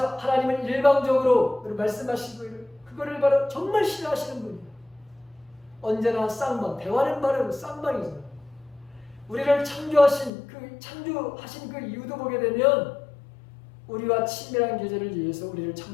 하나님은 일방적으로 말씀하시고 그거를 바로 정말 싫어하시는 분이에요. 언제나 쌍방, 대화는 바로 쌍방이잖아요. 우리를 창조하신 그 이유도 보게 되면 우리와 친밀한 교제를 위해서 우리를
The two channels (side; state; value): right; drops out; at 10.3 s